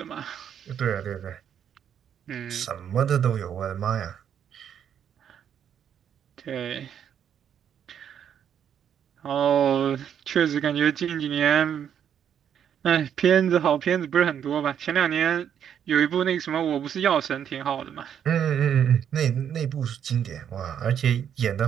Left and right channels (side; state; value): left; quieter; 8.8 dB